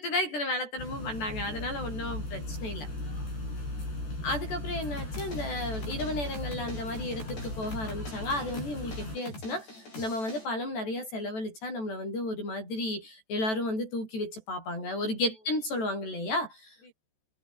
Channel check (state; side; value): late; right; 14 ms